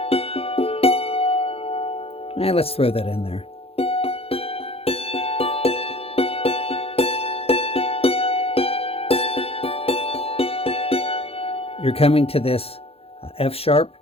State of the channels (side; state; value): right; late; 0.28 ms